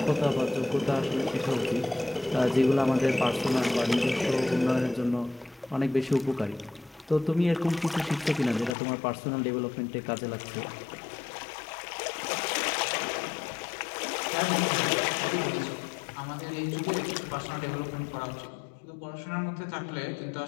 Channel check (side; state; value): right; drops out; at 8.8 s